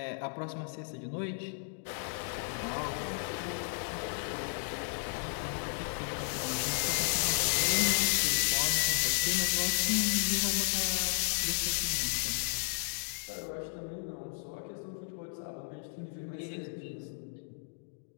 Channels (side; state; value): right; silent; digital silence